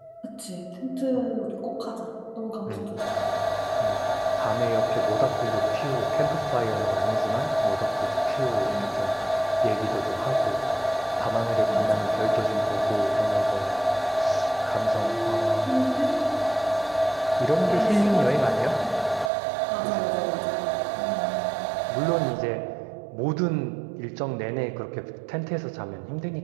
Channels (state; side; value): drops out; left; at 19.3 s